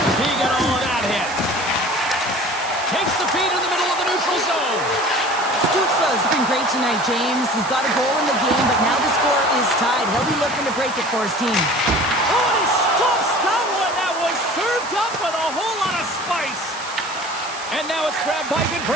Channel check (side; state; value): right; noise; hiss, 14 dB below the sound